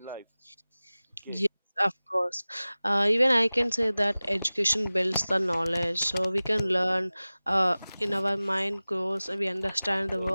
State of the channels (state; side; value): inverted; both; correlation -0.98